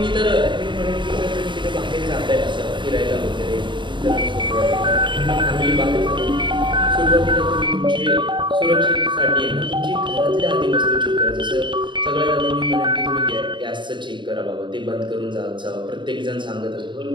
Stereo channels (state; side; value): late; left; 0.23 ms